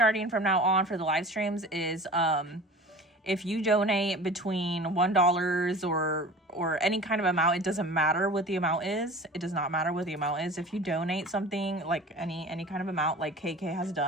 from now on for the live streams is if you donate between $1 or any kind of amount, it doesn't matter what the amount is. It does not matter what the amount is. If you donate something like any kind of amount, like KK has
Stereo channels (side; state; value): both; normal; correlation 0.39